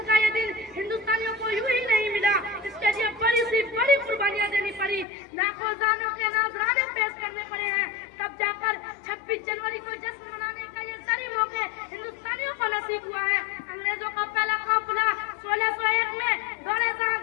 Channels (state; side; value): drops out; right; at 5.1 s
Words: کا یہ دن ہندوستانیوں کو یوں ہی نہیں ملا، اس کے لیے بڑی قربانیاں دینی پڑی، لاکھوں جانوں کے نذرانے پیش کرنے پڑے ہیں، تب جا کر 26 جنوری کو جشن منانے کا یہ ساری موقع ہندوستانیوں کو نصیب ہوا ہے. انگریزوں کا پہلا قافلہ 1601 میں دورے